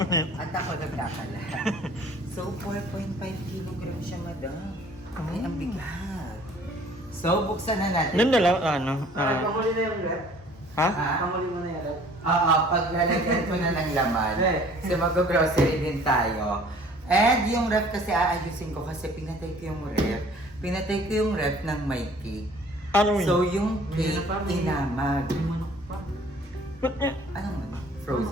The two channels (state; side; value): normal; both; correlation 0.53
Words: At ako nagkakalat. So, 4.5 kilogram siya, madam. Ay, ang bigat. So, buksan na natin. Doon na lang, ano? Pamuli na yung rep? Ha? Pamuli mo na yung rep? Oo, paglalagyan ko na ng laman. So, mag-grocery din tayo. And yung ref kasi aayusin ko kasi pinatay ko yung ref. Pinatay ko yung ref ng may cake. Ano yun? So, yung cake, inamag. May manok pa. Ba't niya? Anong ano?